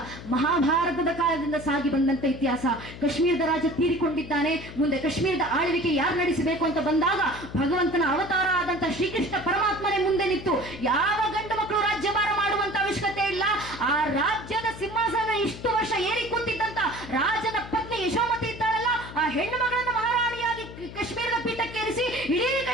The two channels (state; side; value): noise; left; hum, 13 dB below the sound